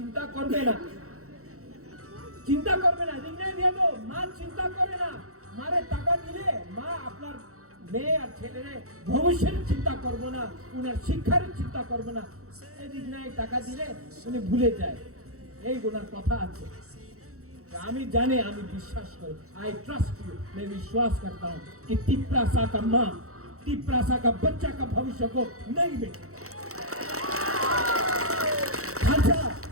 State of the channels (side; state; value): left; late; 0.64 ms